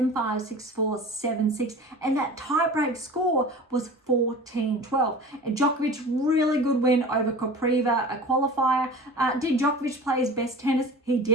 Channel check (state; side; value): normal; both; correlation 0.38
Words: 6-4, 7-6. And that tiebreak score was 14-12. And Djokovic, really good win over Kopriva, a qualifier. Did Djokovic play his best tennis? He